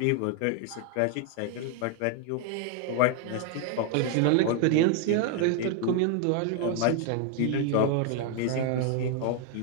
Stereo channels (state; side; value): different; both; correlation 0.00